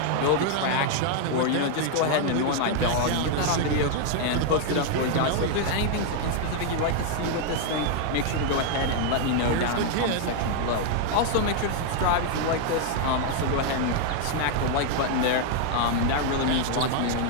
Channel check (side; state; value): both; different; correlation 0.00